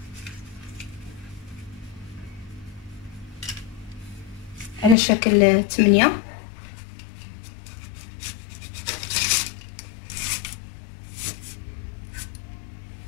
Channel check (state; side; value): drops out; right; at 5.0 s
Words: على شكل 8.